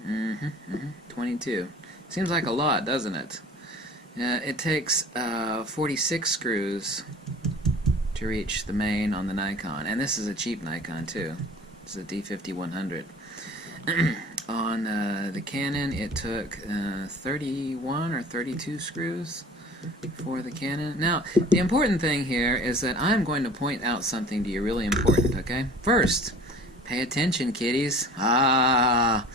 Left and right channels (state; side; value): normal; both; correlation 0.44